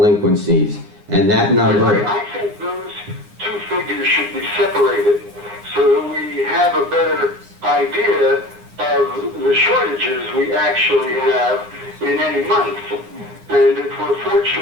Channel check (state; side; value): late; left; 9.7 ms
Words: And that number... I think those two figures should be separated so that we have a better idea of the shortages we actually have in any month. And if we're